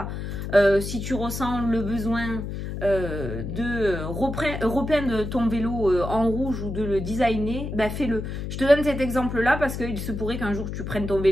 Si tu ressens le besoin de repeindre ton vélo en rouge ou de le designer, ben fais-le. Je te donne cet exemple-là parce qu'il se pourrait qu'un jour tu prennes ton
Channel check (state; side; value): noise; left; hum, 6 dB below the sound